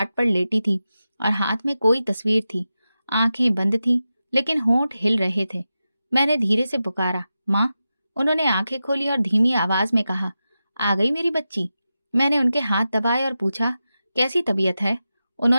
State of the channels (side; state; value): both; inverted; correlation -0.92